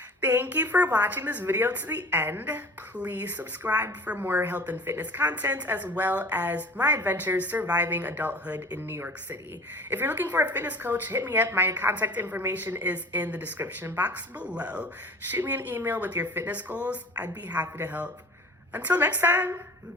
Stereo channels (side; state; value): both; normal; correlation 0.42